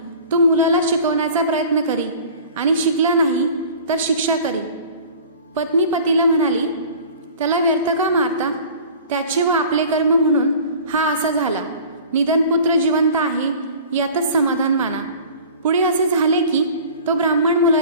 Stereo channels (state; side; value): inverted; both; correlation -0.43